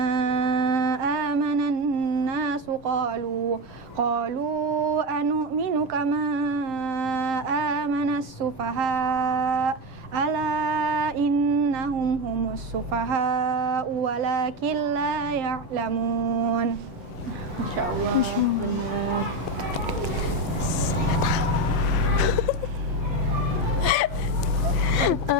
amanan nasu qalu anu'minu kama amanas sufaha ala innahum humus sufaha walakin la ya'lamun. Masya Allah, benar.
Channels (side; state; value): left; late; 6.9 ms